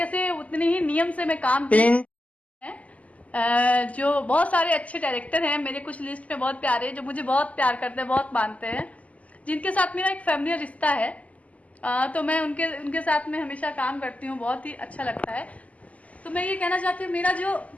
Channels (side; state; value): right; late; 0.071 ms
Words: से, उतने ही नियम से मैं काम जो बहुत सारे अच्छे डायरेक्टर हैं मेरे कुछ लिस्ट में बहुत प्यारे, जो मुझे बहुत प्यार करते हैं, बहुत मानते हैं, जिनके साथ मेरा एक फैमिली रिश्ता है। तो मैं उनके साथ में हमेशा काम करती हूँ, बहुत ही अच्छा लगता है। तो मैं ये कहना चाहती हूँ, मेरा जो